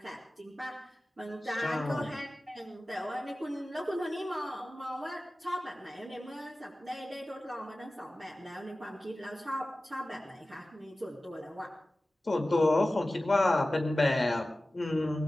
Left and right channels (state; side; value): normal; both; correlation 0.96